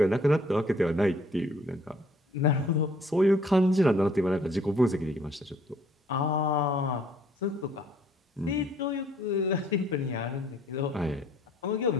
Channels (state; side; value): normal; both; correlation 0.61